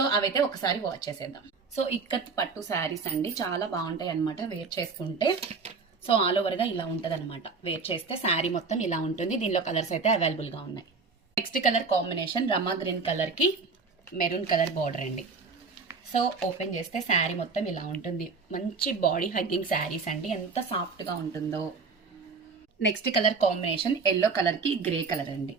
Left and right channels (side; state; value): left; quieter; 4.7 dB